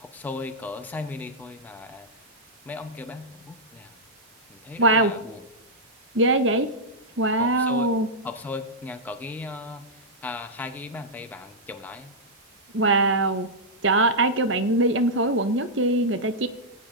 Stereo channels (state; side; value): noise; right; hiss, 29 dB below the sound